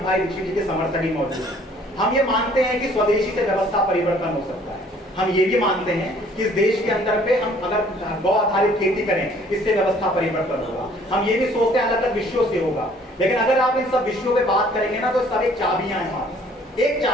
भाई ऋषि जी के समर्थक ही मौजूद है, हम ये मानते हैं कि स्वदेशी से व्यवस्था परिवर्तन हो सकता है। हम ये भी मानते हैं कि इस देश के अंदर पे हम अगर गौ आधारित खेती करें इससे व्यवस्था परिवर्तन होगा। हम ये भी सोचते हैं अलग अलग विषयों से होगा, लेकिन अगर आप इन सब विषयों पे बात करेंगे ना तो सब एक चाबियां हैं, एक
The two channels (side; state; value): both; normal; correlation 0.58